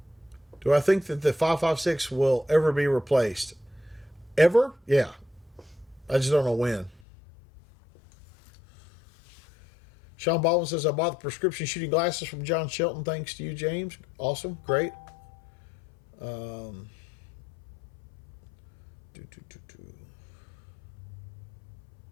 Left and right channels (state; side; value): drops out; right; at 7.0 s